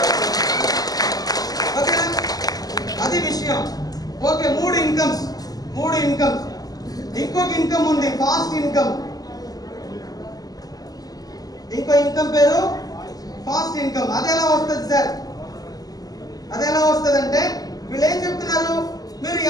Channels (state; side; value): late; right; 0.18 ms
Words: ఓకేనా? అది విషయం. Okay, 3 incomes. ఇంకొక ఇన్కమ్ ఉంది, ఫాస్ట్ ఇన్కమ్. ఇంకో ఇన్కమ్ పేరు ఫాస్ట్ ఇన్కమ్. అది ఎలా వస్తుంది సార్? అది ఎలా వస్తుంది అంటే వీళ్ళు ఏం చెప్తున్నారు, మీరు